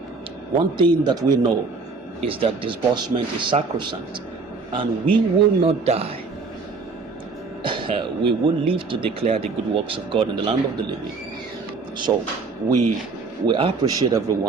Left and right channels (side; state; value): left; quieter; 4.3 dB